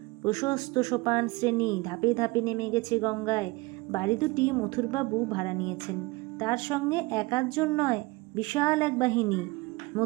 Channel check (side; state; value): left; quieter; 23.1 dB